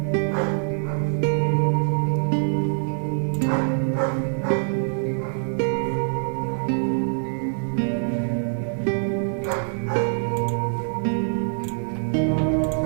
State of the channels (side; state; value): left; silent; digital silence